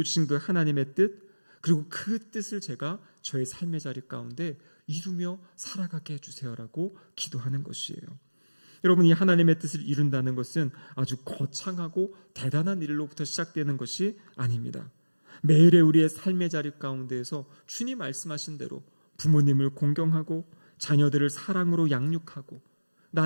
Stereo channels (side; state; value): both; inverted; correlation -1.00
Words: 그 하나님의 뜻, 그리고 그 뜻을 제가 저의 삶의 자리 가운데 이루며 살아가게 해주세요라고 기도하는 것이에요. 여러분, 이 하나님의 뜻을 이룬다는 것은 아주 거창하고 대단한 일로부터 시작되는 것이 아닙니다. 매일의 우리의 삶의 자리 가운데에서 주님 말씀하신 대로 부모님을 공경하고 자녀들을 사랑으로 양육하고